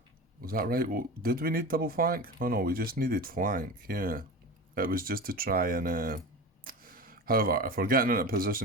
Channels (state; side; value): normal; both; correlation 0.29